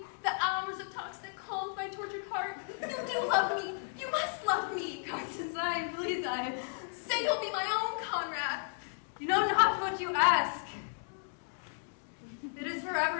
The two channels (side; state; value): right; silent; 55 dB below the other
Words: The hours of talks that calmed my tortured heart. You do love me. You must love me. Constance, please, Say you'll be my own, Conrad. You know not what you ask. It is